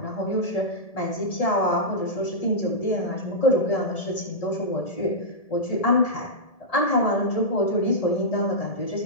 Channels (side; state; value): right; late; 1.7 ms